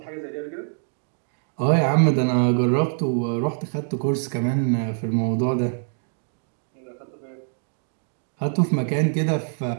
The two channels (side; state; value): left; silent; 59 dB below the other